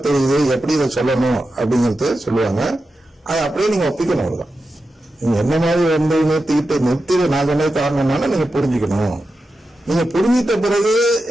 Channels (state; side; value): normal; both; correlation 0.91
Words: தெரியுது, எப்படி இதை சொல்லணும் அப்படிங்கிறது சொல்லுவாங்க. அதை அப்படியே நீங்க ஒப்பிக்கணும். அவ்வளவுதான். நீங்க என்ன மாதிரி நிறுத்தி நான் சொன்னது காரணம்னால நீங்க புரிஞ்சுக்கணும். நீங்க புரிஞ்சிட்ட பிறகு